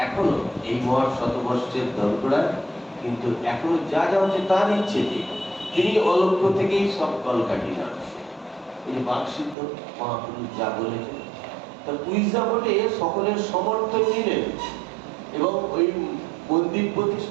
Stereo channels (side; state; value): left; drops out; at 9.6 s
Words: এখনো এই মহান শতবর্ষের দরগড়ায় কিন্তু এখনো যা যা হচ্ছে তার ইচ্ছে। তিনি অলক্ষ্য থেকেই সব কলকাঠি নাড়ছে। এই বাকসিদ্ধ মহাপুরুষ যা বলেছেন তার উইজা বলে সকলের সমর্থন নিলেন এবং ওই মন্দির